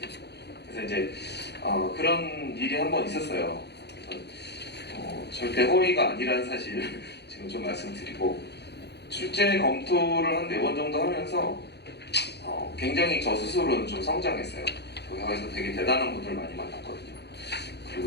그래서 이제 그런 일이 한번 있었어요. 그래서 절대 허위가 아니라는 사실을 지금 좀 말씀드리고, 출제 검토를 한 4번 정도 하면서 굉장히 저 스스로는 좀 성장했어요. 거기서 되게 대단한 분들 많이 만났거든요.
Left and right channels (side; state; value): right; late; 0.49 ms